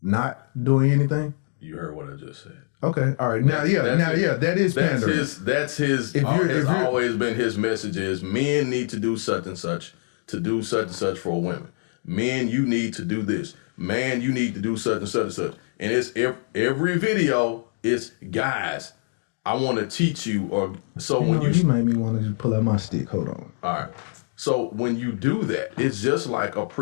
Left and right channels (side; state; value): right; silent; digital silence